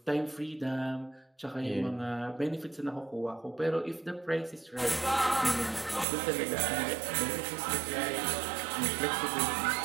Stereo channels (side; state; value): left; drops out; at 6.1 s